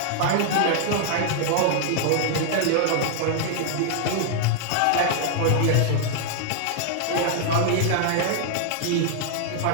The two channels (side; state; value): both; different; correlation 0.00